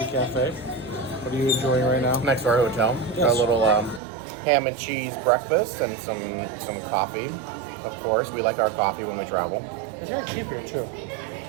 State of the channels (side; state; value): left; drops out; at 4.0 s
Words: cafe. What are you enjoying right now? Next to our hotel. Yes. Got a little ham and cheese breakfast and some coffee. Of course, we like our coffee when we travel. It's very cheap here too.